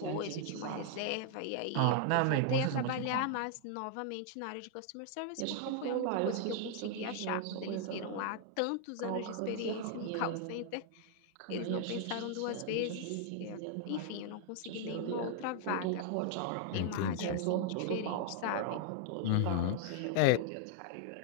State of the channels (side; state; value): both; different; correlation 0.00